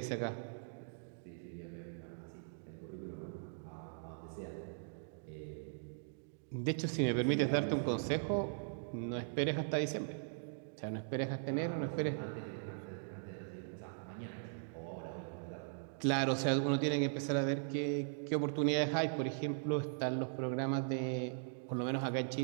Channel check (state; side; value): silent; left; digital silence